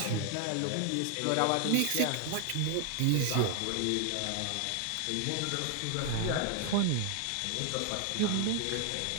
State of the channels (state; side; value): different; both; correlation 0.00